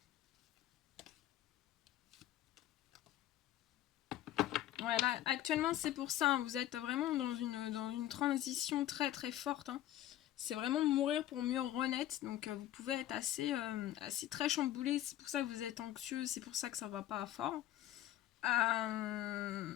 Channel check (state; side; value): quieter; right; 13.2 dB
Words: Ouais, là, actuellement, c'est pour ça. Hein, vous êtes vraiment dans une transition très très forte. Hein. C'est vraiment mourir pour mieux renaître. Donc, vous pouvez être assez très chamboulé. C'est pour ça que vous êtes anxieux. C'est pour ça que ça va pas fort. Et